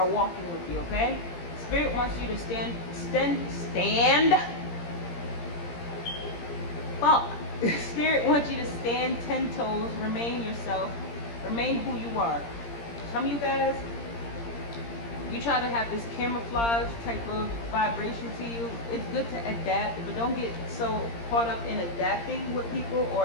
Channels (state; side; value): late; right; 17 ms